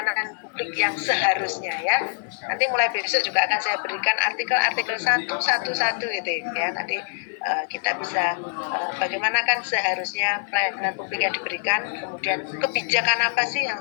publik yang seharusnya ya. Nanti mulai besok juga akan saya berikan artikel-artikel satu gitu ya. Nanti kita bisa bagaimana kan seharusnya pelayanan publik yang diberikan, kemudian kebijakan apa sih yang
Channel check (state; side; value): silent; right; digital silence